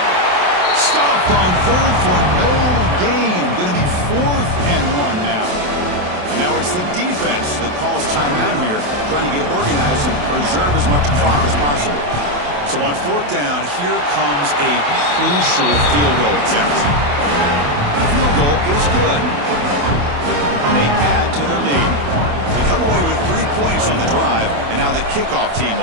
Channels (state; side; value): late; left; 28 ms